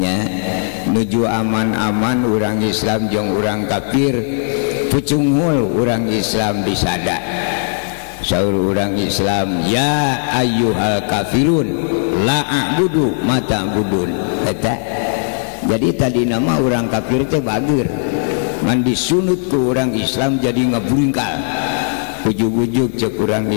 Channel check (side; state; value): right; silent; 68 dB below the other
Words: nuju aman-aman urang Islam jeung urang kafir pucunghul urang Islam disada. Saur urang Islam ya ayyuhal kafirun la a'budu ma ta'budun eta. Jadi tadi nama urang kafir teh bageur ngan disunut ku urang Islam jadi ngaburingkal ujug-ujug cek urang